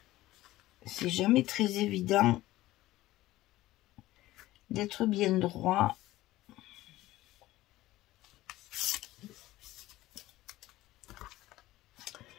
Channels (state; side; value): quieter; right; 16.5 dB